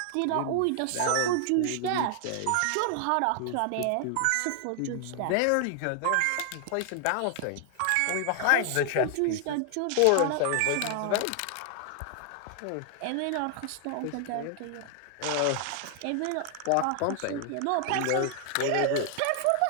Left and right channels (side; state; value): both; different; correlation 0.00